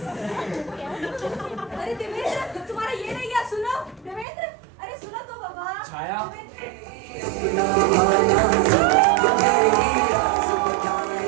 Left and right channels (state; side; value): drops out; left; at 4.2 s